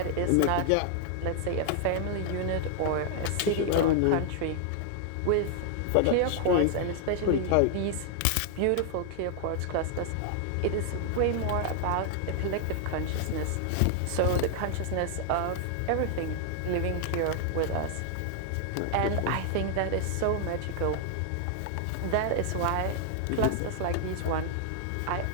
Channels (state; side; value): different; both; correlation 0.00